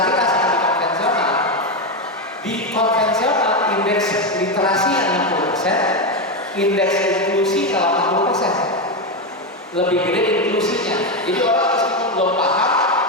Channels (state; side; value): normal; both; correlation 0.10